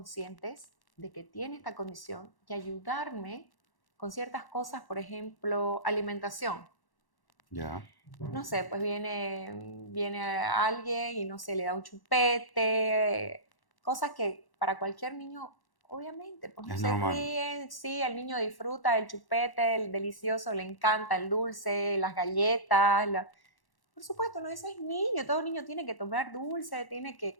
de que tiene esta condición y ayudarme con ciertas cosas, por ejemplo, alimentación. Ya. No sé, pues viene alguien y no sé, le da un chupete, cosas que para cualquier niño, obviamente, pues no Es se normal. ríen, sí, el niño disfruta el chupete, el delicioso, le encanta el dulce, las galletas, por supuesto, no, ese es niño, todo niño tiene que tomar dulce, tiene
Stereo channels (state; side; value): late; right; 1.1 ms